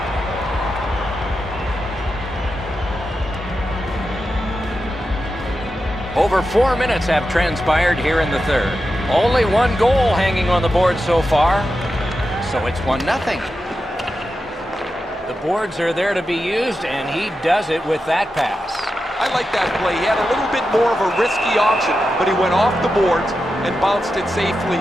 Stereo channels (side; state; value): both; normal; correlation 0.90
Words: Over 4 minutes have transpired here in the third. Only one goal hanging on the board so far, so it's 1-0. The boards are there to be used, and he does it with that pass. I like that play. He had a little bit more of a risky option, but he went off the boards and bounced it safely